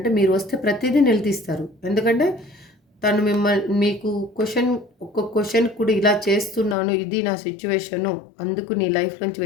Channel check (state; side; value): drops out; right; at 6.8 s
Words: మీరు వస్తే ప్రతిదీ నిలదీస్తారు. ఎందుకంటే తను మీకు ఒక్క క్వశ్చన్ కూడా ఇలా చేస్తున్నాను, ఇది నా సిచ్యువేషను, అందుకు నీ లైఫ్ నుంచి